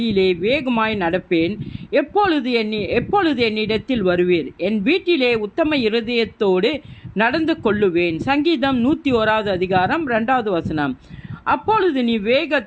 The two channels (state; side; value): identical; both; correlation 1.00